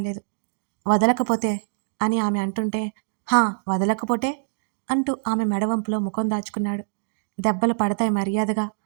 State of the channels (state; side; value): silent; left; digital silence